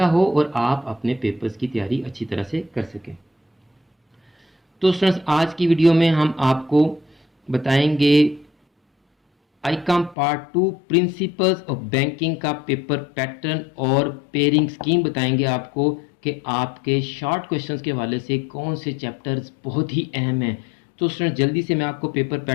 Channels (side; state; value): right; drops out; at 10.2 s